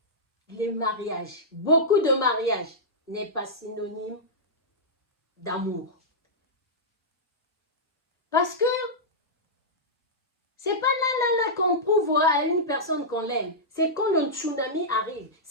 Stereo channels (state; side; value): normal; both; correlation -0.11